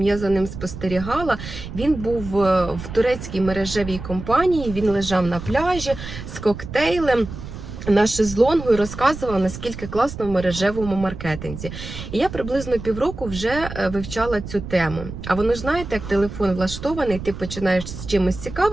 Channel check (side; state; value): right; noise; rumble, 10 dB below the sound